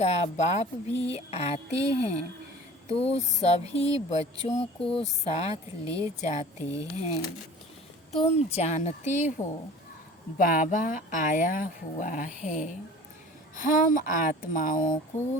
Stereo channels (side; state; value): both; normal; correlation 0.43